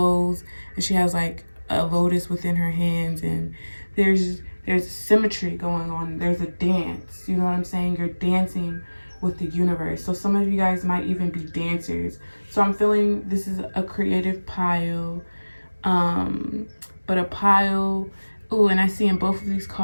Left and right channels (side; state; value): both; inverted; correlation -1.00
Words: and she has like a lotus within her hands, and there's symmetry going on. There's a dance. You know what I'm saying? You're dancing with the universe. So some of you guys might even be dancers. So I'm feeling this is a creative pile. But a pile. Ooh, and I see in both of these